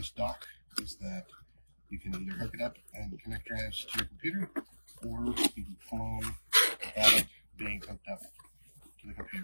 dock is that you can either hook it up and connect drives to your computer, or you can clone without it being hooked up to the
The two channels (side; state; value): both; inverted; correlation -1.00